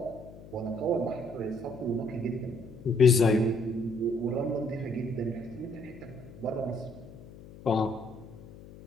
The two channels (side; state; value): left; noise; hum, 17 dB below the sound